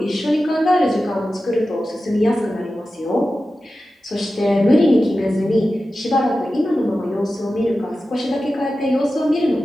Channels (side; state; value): both; normal; correlation 0.93